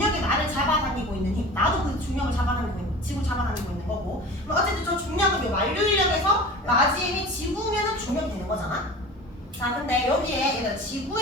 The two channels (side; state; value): both; normal; correlation 0.37